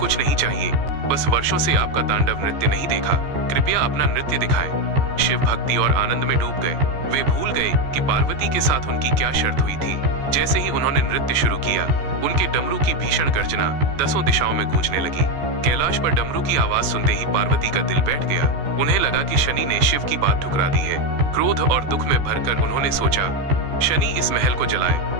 नहीं चाहिए, बस वर्षों से आपका तांडव नृत्य नहीं देखा, कृपया अपना नृत्य दिखाएं। शिव भक्ति और आनंद में डूब गए। वे भूल गए कि पार्वती के साथ उनकी क्या शर्त हुई थी। जैसे ही उन्होंने नृत्य शुरू किया, उनके डमरू की भीषण गर्जना 10 दिशाओं में गूंजने लगी। कैलाश पर डमरू की आवाज सुनते ही पार्वती का दिल बैठ गया। उन्हें लगा कि शनि ने शिव की बात ठुकरा दी है। क्रोध और दुख में भरकर उन्होंने सोचा, शनि इस महल को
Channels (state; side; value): late; left; 14 ms